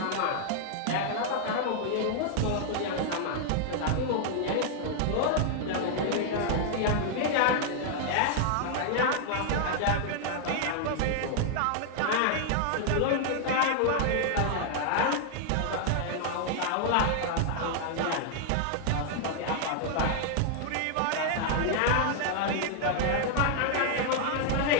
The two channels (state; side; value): different; both; correlation 0.00